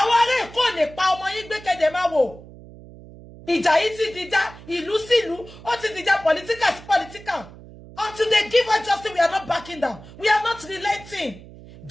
ará Èkó lè pa ọmọ yín gbé kéde máa wò. Ìjà yìí ti dìjà ìlú sí ìlú, ó ti dìjà political sí political. Until they give us justice, we are not backing down. We are not relenting.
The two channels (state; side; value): noise; right; hum, 18 dB below the sound